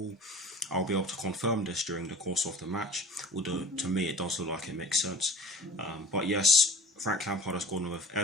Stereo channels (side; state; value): both; normal; correlation 0.43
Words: I'll be able to confirm this during the course of the match, although to me it does look like it makes sense. But yes, Frank Lampard has gone with